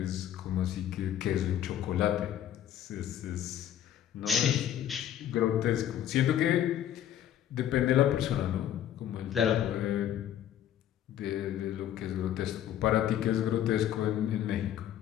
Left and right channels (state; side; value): quieter; right; 10.9 dB